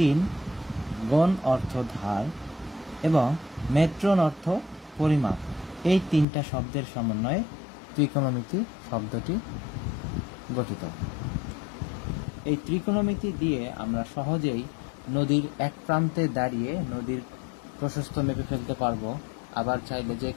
গণ অর্থ ধার এবং মেট্রন অর্থ পরিমাপ, এই তিনটা শব্দের সমন্বয়ে ত্রিকোণমিতি শব্দটি গঠিত। এই ত্রিকোণমিতি দিয়ে আমরা সহজেই নদীর এক প্রান্তে দাঁড়িয়ে নদীর প্রশস্ত মেপে ফেলতে পারবো। আবার চাইলে যে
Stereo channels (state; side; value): drops out; right; at 6.2 s